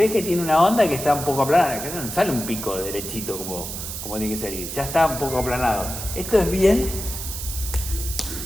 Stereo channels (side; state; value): right; noise; hiss, 7 dB below the sound